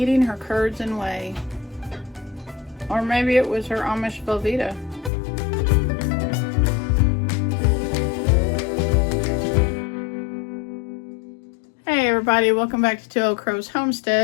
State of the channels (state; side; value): drops out; right; at 5.1 s